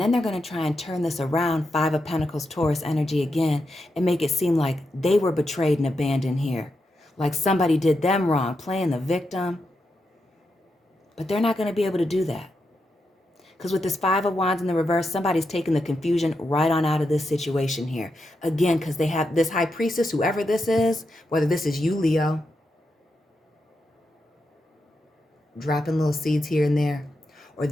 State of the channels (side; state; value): both; normal; correlation 0.86